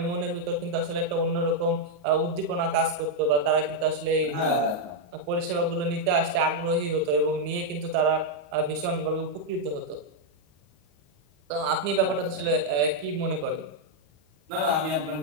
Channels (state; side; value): late; left; 34 ms